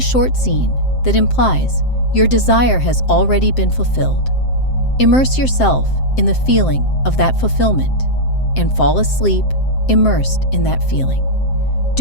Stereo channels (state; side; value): late; right; 7.7 ms